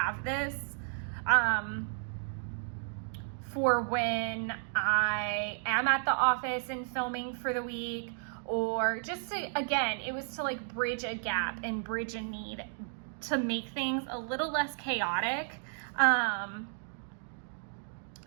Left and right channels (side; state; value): left; silent; digital silence